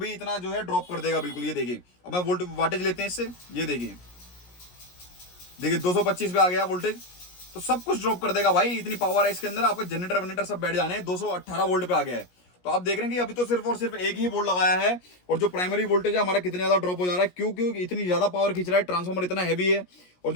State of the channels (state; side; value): late; right; 17 ms